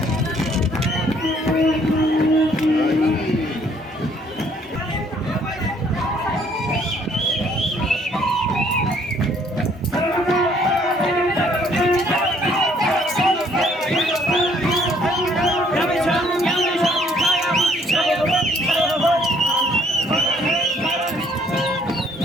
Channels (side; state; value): both; normal; correlation 0.63